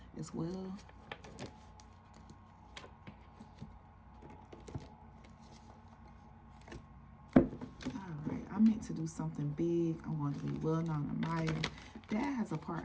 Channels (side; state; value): both; identical; correlation 1.00